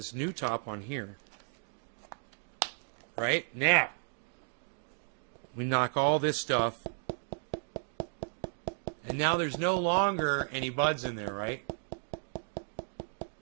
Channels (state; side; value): silent; left; 55 dB below the other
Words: new top on here. Right? Now, we knock all this stuff. And now there's no longer any buds in there, right?